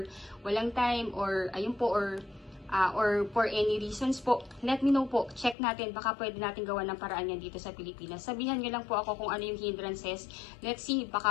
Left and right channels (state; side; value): drops out; right; at 5.6 s